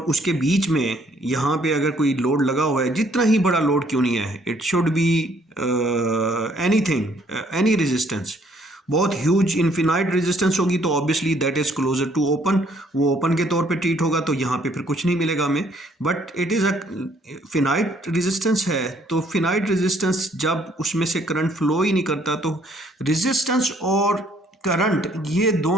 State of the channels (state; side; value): normal; both; correlation 0.64